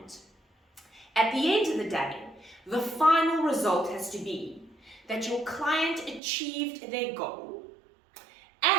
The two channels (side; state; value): left; drops out; at 6.2 s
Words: At the end of the day, the final result has to be that your client achieved their goal